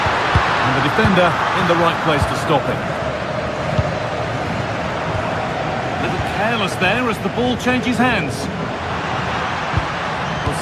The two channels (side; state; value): both; identical; correlation 1.00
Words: And the defender in the right place to stop it. A little careless there as the ball changes hands. Well,